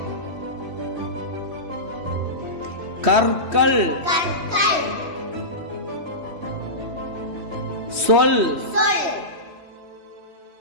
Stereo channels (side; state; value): left; late; 3.3 ms